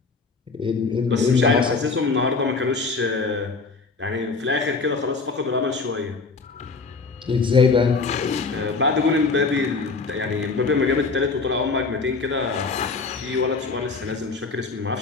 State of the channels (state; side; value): quieter; right; 4.3 dB